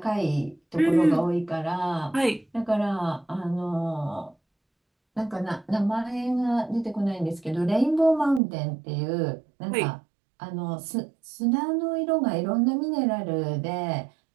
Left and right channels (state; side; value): drops out; left; at 8.4 s